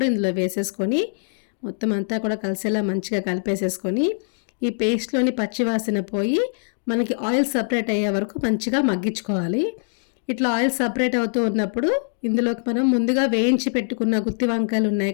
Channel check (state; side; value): silent; right; digital silence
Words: ఇందులో వేసేసుకొని మొత్తం అంతా కూడా కలిసేలా మంచిగా కలిపేసేసుకొని ఈ పేస్ట్లోని పచ్చివాసన పోయి మనకి ఆయిల్ సపరేట్ అయ్యే వరకు మంచిగా మగ్గించుకోవాలి. ఇట్లా ఆయిల్ సపరేట్ అవుతూ ఉన్నప్పుడు ఇందులోకి మనం ముందుగా వేయించి పెట్టుకున్న గుత్తి వంకాయలు ఉన్నాయి